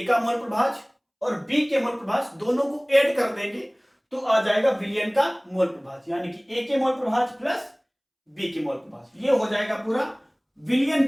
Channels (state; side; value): identical; both; correlation 1.00